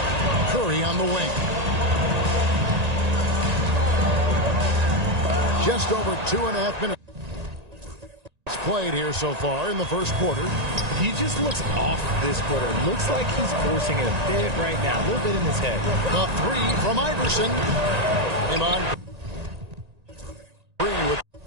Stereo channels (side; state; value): left; late; 1.9 ms